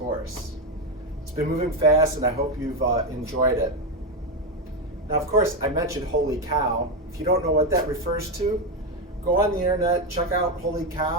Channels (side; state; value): both; normal; correlation 0.09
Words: It's been moving fast, and I hope you've enjoyed it. Now, of course, I mentioned holy cow. If you don't know what that refers to, go on the internet, check out holy